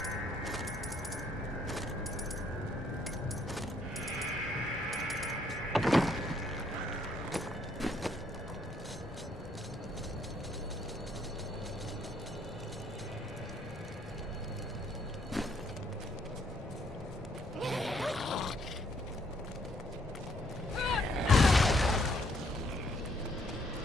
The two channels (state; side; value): normal; both; correlation 0.69